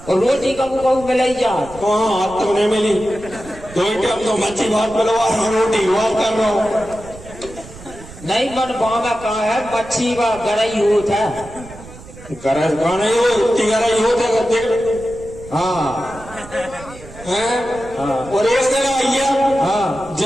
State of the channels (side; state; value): right; noise; rumble, 17 dB below the sound